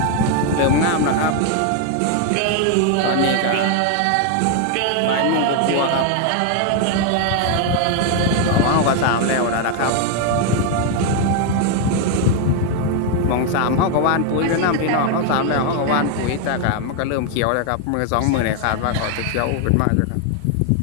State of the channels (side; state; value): both; different; correlation 0.00